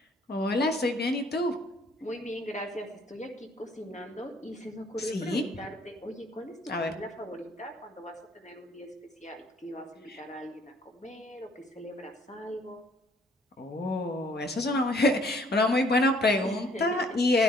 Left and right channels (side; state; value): both; normal; correlation 0.61